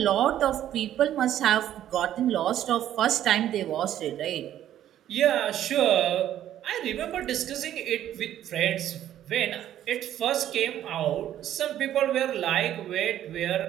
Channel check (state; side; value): quieter; left; 11.6 dB